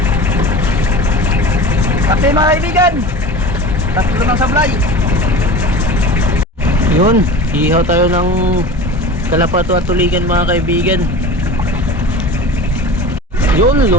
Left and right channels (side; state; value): both; normal; correlation 0.34